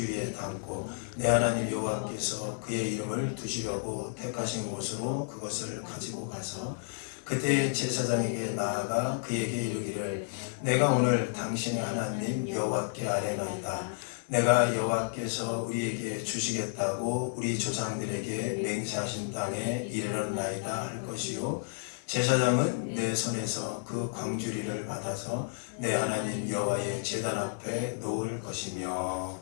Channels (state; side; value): silent; right; digital silence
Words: 담고 내 하나님 여호와께서 그의 이름을 두시려고 택하신 곳으로 그것을 가지고 가서 그때 제사장에게 나아가 그에게 이르기를 내가 오늘 당신의 하나님 여호와께 아뢰나이다. 내가 여호와께서 우리에게 주시겠다고 우리 조상들에게 맹세하신 땅에 이르렀나이다 할 것이요 제사장은 내 손에서 그 광주리를 받아서 내 하나님 여호와의 제단 앞에 놓을 것이며.